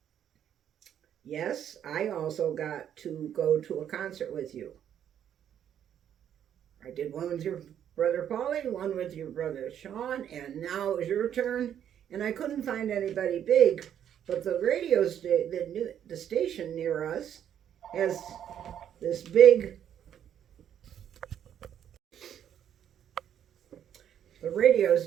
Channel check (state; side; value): quieter; left; 9.7 dB